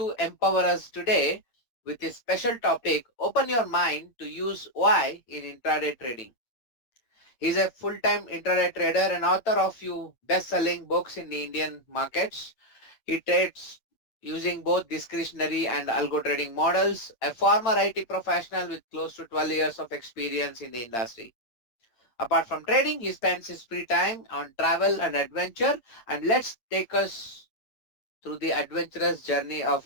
empower us today with his special topic, Open Your Mind to Use Why in Intraday Trading. He's a full-time intraday trader and author of few best-selling books in the Indian markets. He trades using both discretionary and algo trading models, a former IT professional with close to 12 years of experience in the industry. Apart from trading, he spends his free time on travel and adventure, and let's take us through the adventurous journey of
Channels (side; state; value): right; late; 8.8 ms